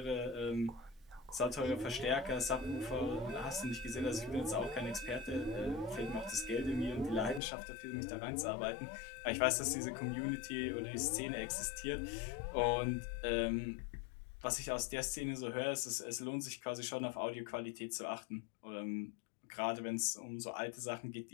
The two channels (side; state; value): right; drops out; at 7.4 s